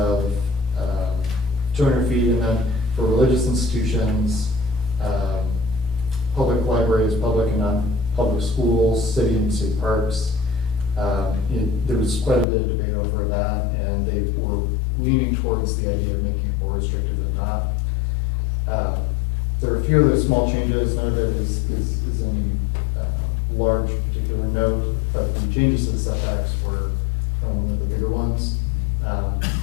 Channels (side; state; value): right; drops out; at 12.5 s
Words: 200 feet, and then for religious institutions, public libraries, public and non-public schools, city and state parks. There was quite a bit of debate over that, and they were leaning towards the idea of making it more restrictive than not. There are a few other small changes. None of it is any large particular note, but the changes to the setbacks were kind of one of the bigger ones.